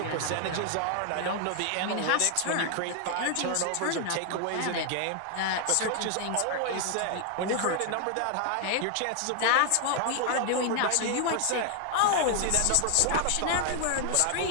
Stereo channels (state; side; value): different; both; correlation 0.00